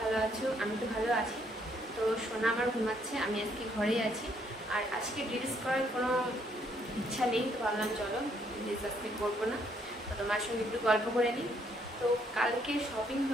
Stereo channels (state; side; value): normal; both; correlation 0.69